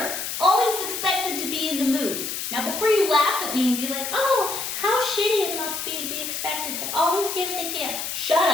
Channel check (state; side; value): noise; left; hiss, 4 dB below the sound